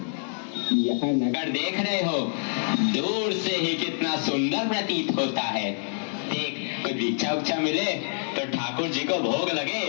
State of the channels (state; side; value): silent; right; 60 dB below the other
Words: यह नगर देख रहे हो, दूर से ही कितना सुंदर प्रतीत होता है। देख, कोई भिक्षा उच्चा मिले तो ठाकुर जी को भोग लगे।